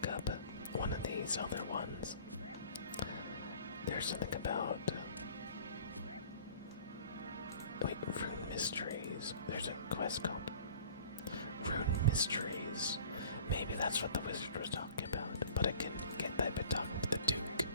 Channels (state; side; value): inverted; both; correlation -0.46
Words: up one of these other ones. There's something about... Wait, Rune Mysteries. There's a quest called Rune Mysteries. Maybe that's what the wizard was talking about. But I can get that by talking to the Duke.